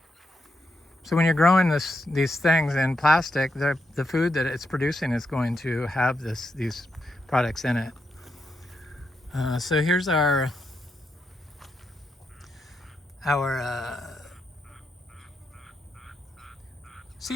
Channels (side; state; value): both; normal; correlation 0.83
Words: So when you're growing these things in plastic, the food that it's producing is going to have these products in it. So here's our